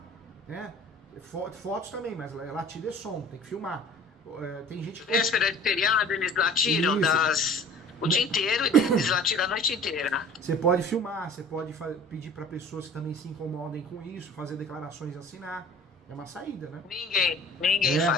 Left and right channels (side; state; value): both; normal; correlation 0.46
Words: né? Fotos também, mas latido é som, tem que filmar. Tem gente que... Véspera de feriado, eles latiram o dia inteiro e eles latiram a noite inteira. Você pode filmar, você pode pedir para pessoas que também se incomodem com isso, fazer declarações e assinar. É uma saída, né? Ninguém